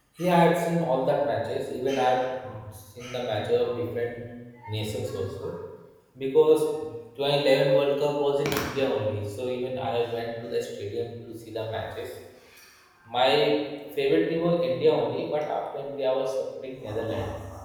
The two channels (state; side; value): identical; both; correlation 1.00